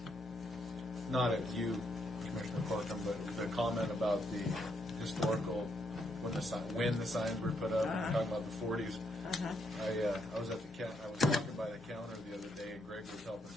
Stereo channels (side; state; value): both; normal; correlation 0.76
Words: not at you, Commissioner Corkum, but the comment about the historical when the signs were put up, talking about the 40s. Uh-huh. I was at I was walking by the counter the other day, and Greg was helping